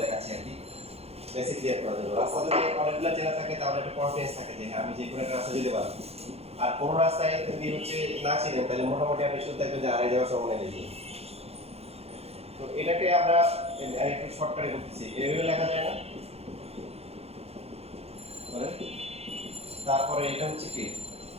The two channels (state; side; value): late; left; 0.29 ms